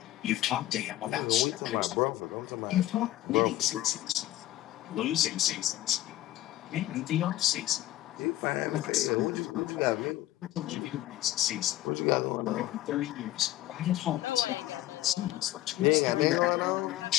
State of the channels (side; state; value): right; quieter; 14.9 dB